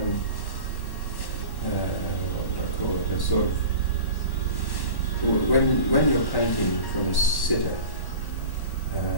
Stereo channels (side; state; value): right; late; 1.1 ms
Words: what would I call it, a sort of, when you're painting from a sitter,